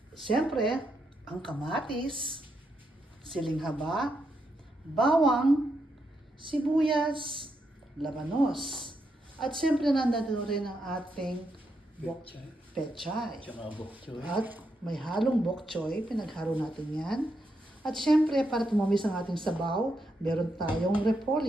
Syempre, ang kamatis, siling haba, bawang, sibuyas, labanos. At syempre, nandito rin ang ating Pechay. pechay. Tsaka bok choy. At may halong bok choy, pinaghalo natin yan. At syempre, para tumamis ang ating sabaw, meron tayong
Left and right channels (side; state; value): both; normal; correlation 0.82